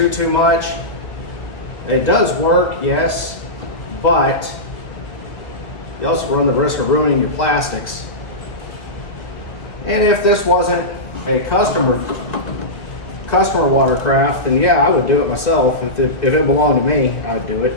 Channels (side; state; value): right; late; 2.1 ms